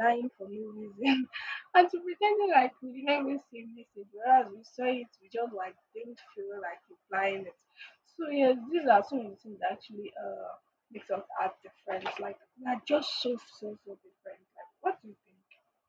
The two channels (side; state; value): both; identical; correlation 1.00